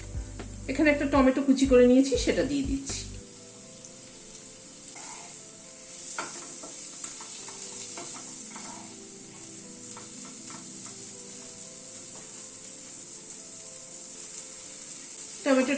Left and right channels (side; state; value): both; identical; correlation 1.00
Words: এখানে একটা টমেটো কুচি করে নিয়েছি, সেটা দিয়ে দিচ্ছি।